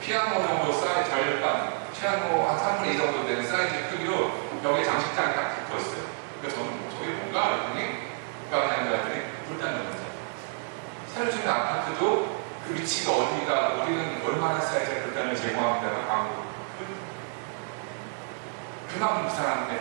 정도 사이즈 절반, 피아노 한 3분의 2 정도 되는 사이즈 크기로 벽에 장식장이 딱 붙어 있어요. 그래서 저는 저게 뭔가 그랬더니 그랬더니 불단 놓는 자리. 새로 짓는 아파트도 그 위치가 어디가 우리는 얼마나 사이즈의 불단을 제공합니다가 광고. 그만큼 부산하는 데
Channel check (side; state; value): left; silent; 55 dB below the other